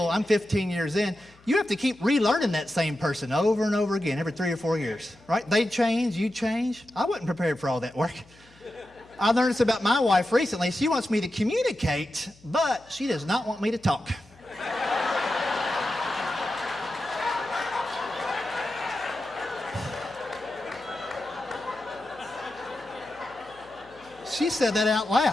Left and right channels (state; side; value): noise; left; hum, 27 dB below the sound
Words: I'm 15 years in. You have to keep relearning that same person over and over again every 3 or 4 years, right? They change, you change. I wasn't prepared for all that work. I learned this about my wife recently. She wants me to communicate, but she does not want me to talk. She said that out